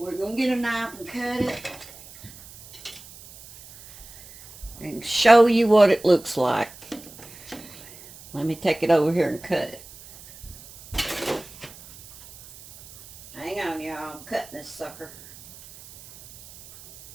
going to get a knife and cut it. And show you what it looks like. Let me take it over here and cut it. Hang on, y'all. I'm cutting this sucker.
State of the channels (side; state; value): right; noise; hiss, 19 dB below the sound